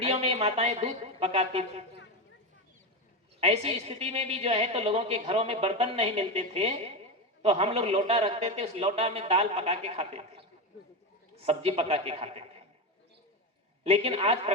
में माताएं दूध पकाती थी। ऐसी स्थिति में भी जो है तो लोगों के घरों में बर्तन नहीं मिलते थे, तो हम लोग लोटा रखते थे, उस लोटा में दाल पका के खाते थे, सब्जी पका के खाते थे। लेकिन आज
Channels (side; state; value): both; normal; correlation 0.15